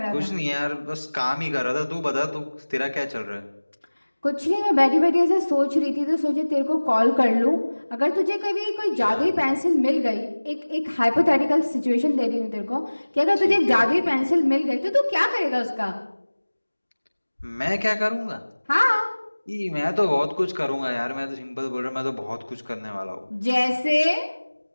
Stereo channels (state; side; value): inverted; both; correlation -1.00